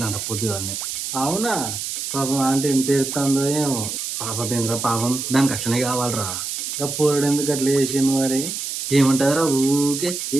పొద్దుగానే. అవునా పాపం ఆంటీ ఎంత ఎడుతుందో ఏమో. పాపం ఏంద్రా పాపం, దానికి అట్లనే కావాలరా. ఇంకా పోరడు ఎందుకు అట్లా చేసిండు మరి? ఏమంటారా ఊకే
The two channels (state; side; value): noise; right; hiss, 5 dB below the sound